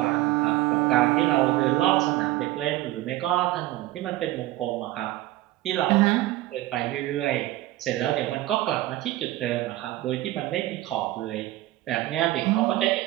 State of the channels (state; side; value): quieter; left; 16.4 dB